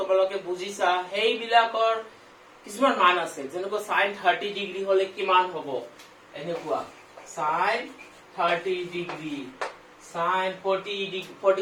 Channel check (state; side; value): identical; both; correlation 1.00